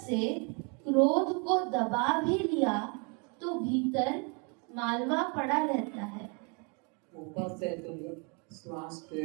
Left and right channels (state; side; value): quieter; left; 34.5 dB